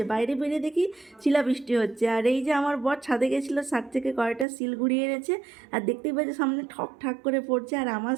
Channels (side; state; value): left; drops out; at 4.5 s